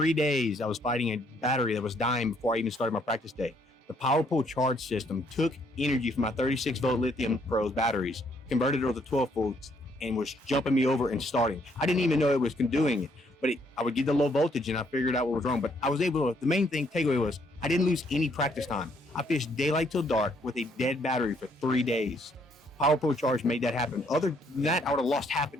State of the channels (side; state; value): both; normal; correlation 0.69